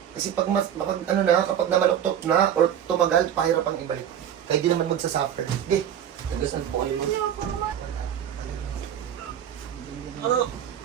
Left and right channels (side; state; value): left; quieter; 9.7 dB